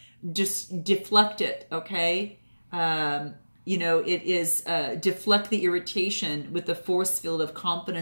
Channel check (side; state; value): both; inverted; correlation -1.00